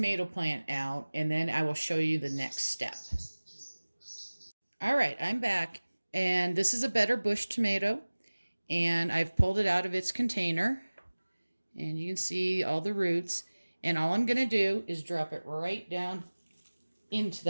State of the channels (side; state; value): both; inverted; correlation -1.00